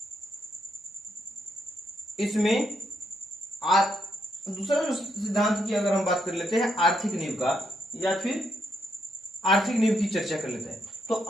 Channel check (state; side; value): normal; both; correlation 0.77